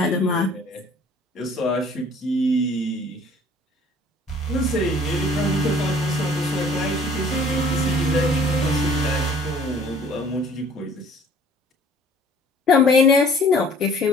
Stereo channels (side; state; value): both; normal; correlation 0.54